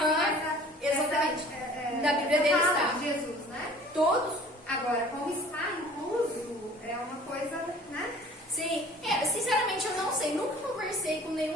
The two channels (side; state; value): both; normal; correlation 0.48